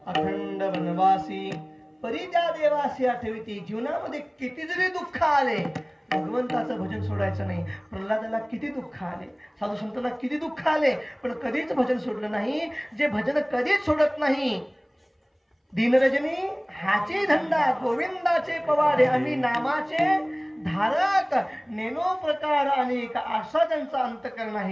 अखंड वनवासी परी त्या देवासी आठविती. जीवनामध्ये किती जरी दुःख आले भगवंताचं भजन सोडायचं नाही. प्रल्हादाला किती दुःख आले, साधू संतांना किती दुःख आले, पण कधीच भजन सोडलं नाही. जे भजन कधीच सोडत नाही. दीनरजनी हाचे धंदा गोविंदाचे पवाडे आम्ही नामाचे धारक नेनो प्रकार अनेक असा ज्यांचा अंतकरण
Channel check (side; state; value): both; identical; correlation 1.00